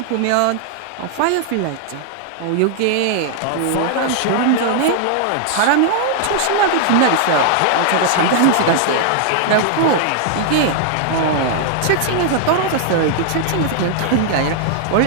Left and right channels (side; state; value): both; different; correlation 0.00